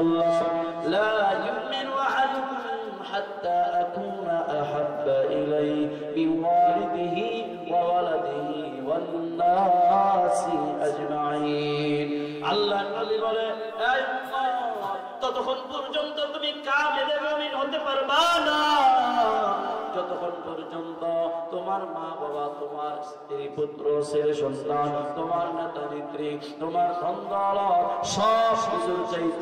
لا يؤمن أحدكم حتى أكون أحب إليه من والده وولده والناس أجمعين। আল্লাহ নবী বলে, এই উম্মত, ততক্ষণ পর্যন্ত তুমি কামিল মুমিন হতে পারবা না যতক্ষণ পর্যন্ত তোমার মা বাবা, তোমার স্ত্রী পুত্র ছেলে সন্তান, তোমার নেতা নেত্রী, তোমার সন্তান সব কিছুর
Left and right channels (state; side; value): identical; both; correlation 1.00